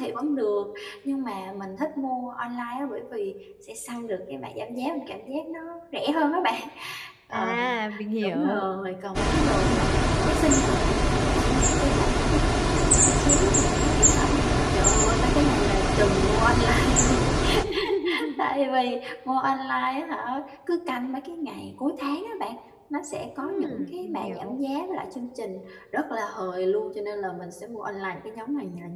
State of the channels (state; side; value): identical; both; correlation 1.00